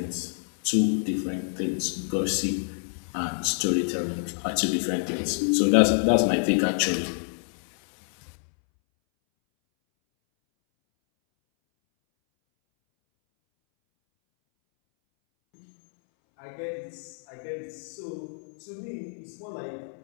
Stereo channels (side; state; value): right; silent; 60 dB below the other